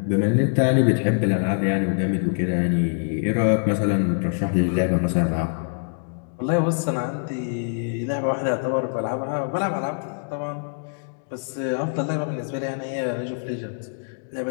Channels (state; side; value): silent; right; digital silence